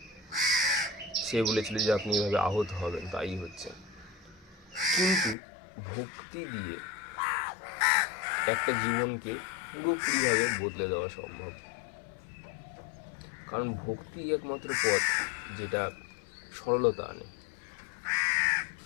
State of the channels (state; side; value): drops out; right; at 5.4 s